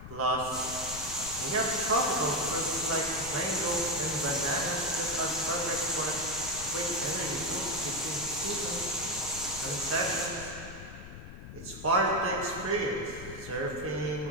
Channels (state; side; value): noise; left; rumble, 13 dB below the sound